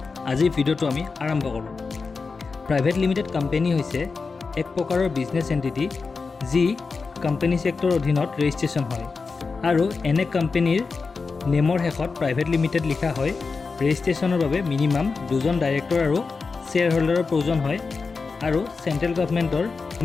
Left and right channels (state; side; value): quieter; right; 4.5 dB